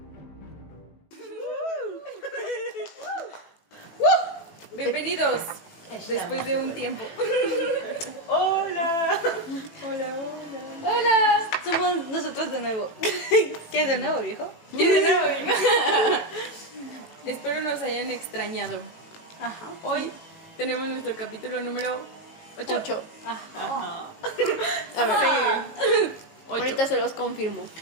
Bienvenidos después de un tiempo. Hola. ¡Hola! Somos nosotros de nuevo. ¿Qué de nuevo, viejo? ¿Qué de nuevo, hija? Espero nos hayan extrañado. Ajá. Hoy tenemos nuestro capítulo número 8. 8. Ajá. A ver, 8. ahorita se los confirmo.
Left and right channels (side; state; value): right; late; 18 ms